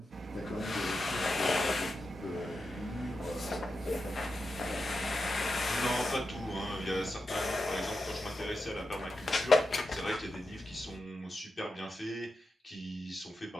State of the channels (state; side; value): normal; both; correlation 0.89